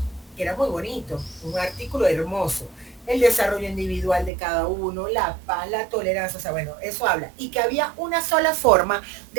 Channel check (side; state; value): left; drops out; at 4.3 s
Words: Que era muy bonito, un artículo hermoso. el desarrollo individual de cada uno, la paz, la tolerancia, o sea, bueno, eso habla. Y que había una sola forma